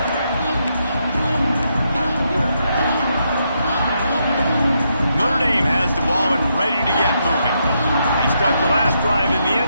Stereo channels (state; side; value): inverted; both; correlation -0.80